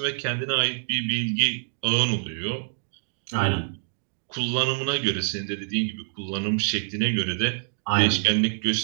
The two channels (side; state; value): left; silent; 61 dB below the other